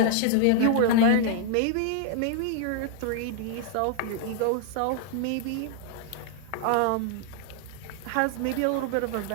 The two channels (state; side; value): different; both; correlation 0.00